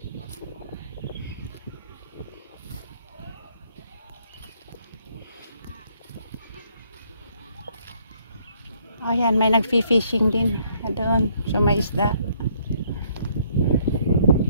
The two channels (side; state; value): both; inverted; correlation -0.67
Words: Ayan, may nag-fishing din doon. So, may isda.